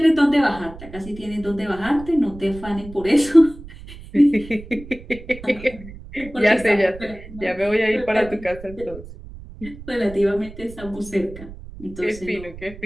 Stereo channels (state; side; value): noise; right; rumble, 16 dB below the sound